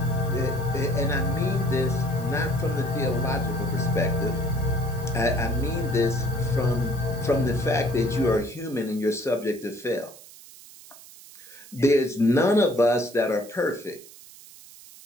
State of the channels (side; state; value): right; noise; hiss, 20 dB below the sound